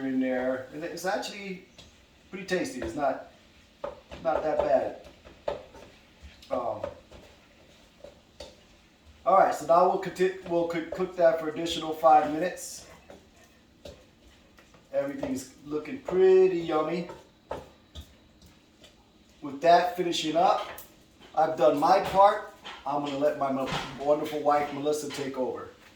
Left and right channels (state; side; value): identical; both; correlation 1.00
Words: in there, and it's actually pretty tasty. It's not that bad. All right, so now we'll cook that for additional 5 minutes. Everything's looking pretty yummy. With that finishing up, I've done my part. I'm going to let my wonderful wife, Melissa, take over.